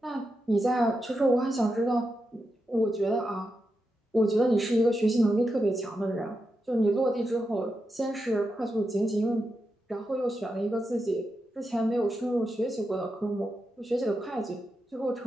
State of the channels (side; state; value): both; normal; correlation 0.87